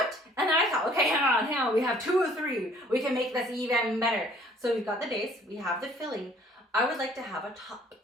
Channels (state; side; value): normal; both; correlation 0.57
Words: And then I thought, okay, hang on, we have 2 or 3. We can make this even better. So we've got the base, we have the filling. I would like to have a top.